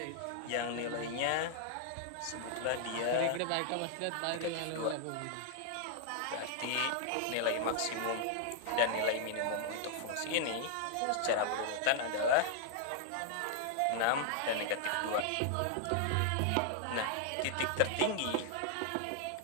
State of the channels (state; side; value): different; both; correlation -0.01